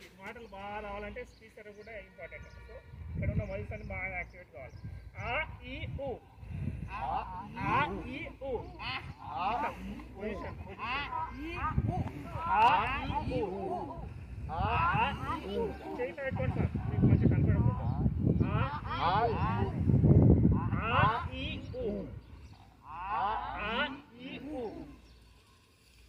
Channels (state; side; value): identical; both; correlation 1.00